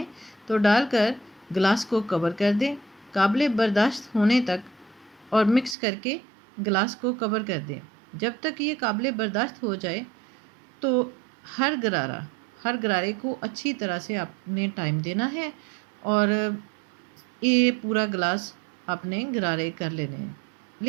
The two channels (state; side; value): drops out; left; at 5.8 s